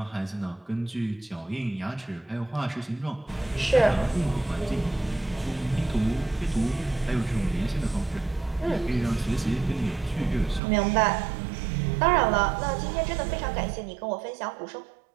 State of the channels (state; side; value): drops out; left; at 10.6 s